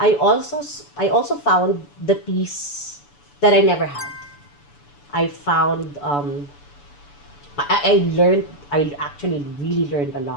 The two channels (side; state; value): right; late; 7.0 ms